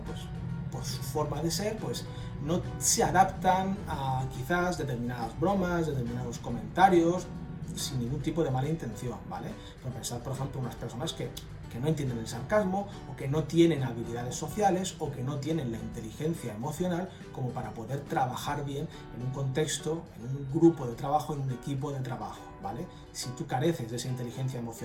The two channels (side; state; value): both; identical; correlation 1.00